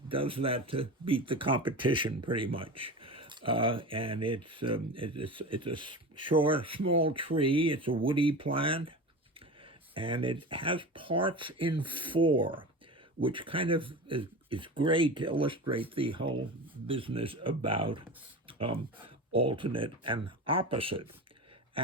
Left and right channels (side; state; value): both; normal; correlation 0.29